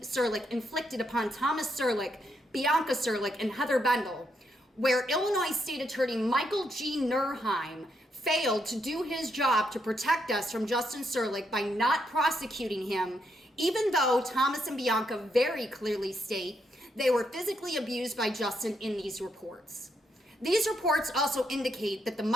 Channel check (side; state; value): both; normal; correlation 0.78